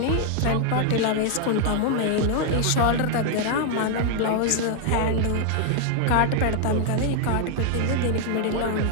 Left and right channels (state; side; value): different; both; correlation 0.00